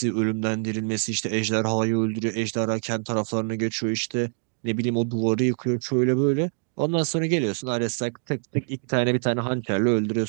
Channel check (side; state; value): left; silent; 62 dB below the other